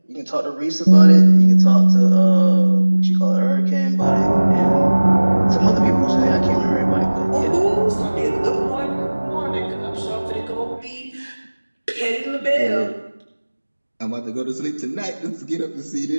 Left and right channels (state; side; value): inverted; both; correlation -1.00